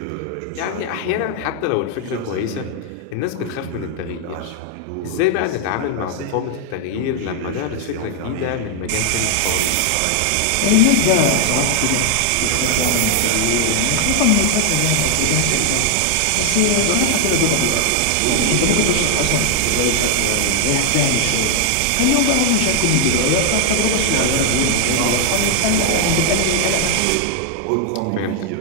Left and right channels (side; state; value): both; different; correlation 0.00